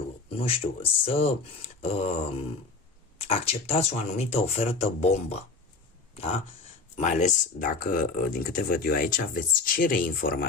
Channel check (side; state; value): right; quieter; 4.0 dB